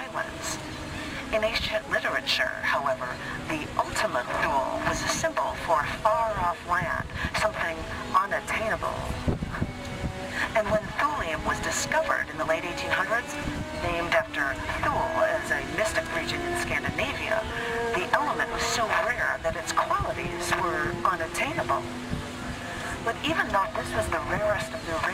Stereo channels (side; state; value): both; identical; correlation 1.00